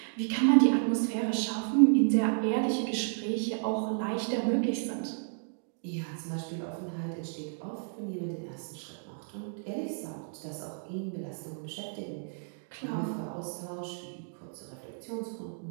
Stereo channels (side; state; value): left; silent; digital silence